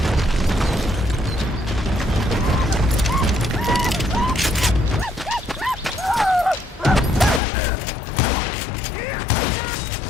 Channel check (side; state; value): right; drops out; at 7.4 s